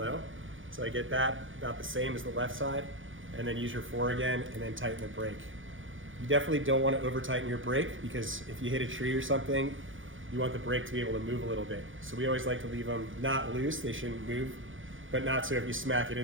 So I get that about the same as the left side, and then use your 4 again, and then tighten the brake. You definitely don't want to over tighten your brake, because if you hit a tree or something, you want the brake to be able to move a little bit. So we always like to leave them not loose, they shouldn't move, but not so if you smack it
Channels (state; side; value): late; left; 0.57 ms